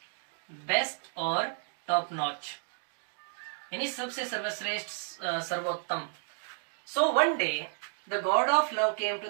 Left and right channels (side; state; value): left; silent; 57 dB below the other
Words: बेस्ट और टॉप नॉच, यानी सबसे सर्वश्रेष्ठ, सर्वोत्तम। So one day the god of love came to